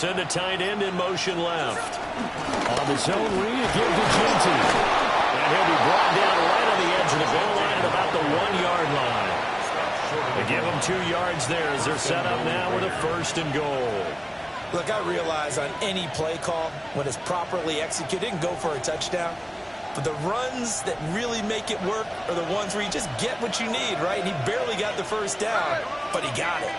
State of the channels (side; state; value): both; identical; correlation 1.00